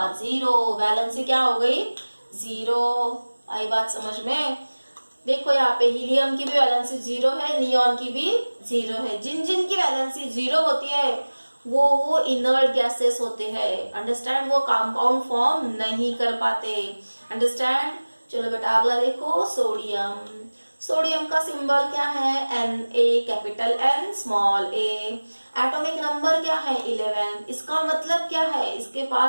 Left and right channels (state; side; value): inverted; both; correlation -1.00